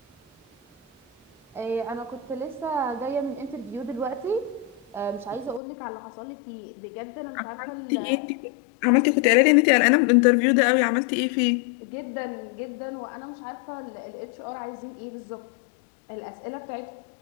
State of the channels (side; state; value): right; drops out; at 5.6 s